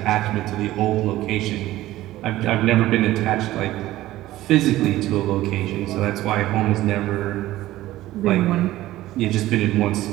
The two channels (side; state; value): left; quieter; 15.7 dB